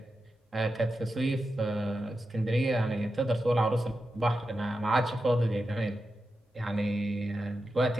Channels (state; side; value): normal; both; correlation 0.90